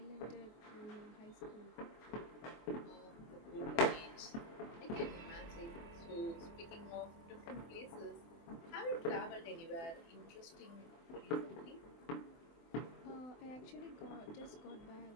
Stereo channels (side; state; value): right; late; 23 ms